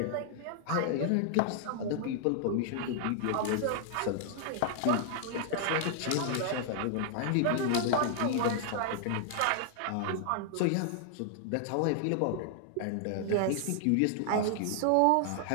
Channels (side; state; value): both; different; correlation 0.00